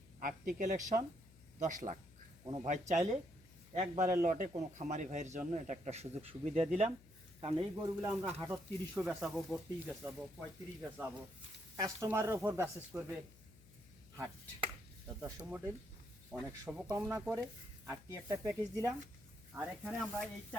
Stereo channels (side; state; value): left; noise; hum, 23 dB below the sound